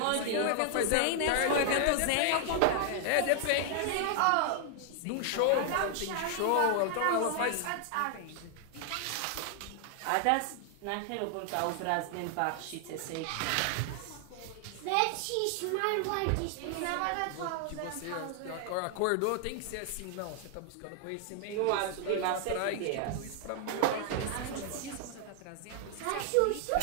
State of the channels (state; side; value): different; both; correlation 0.00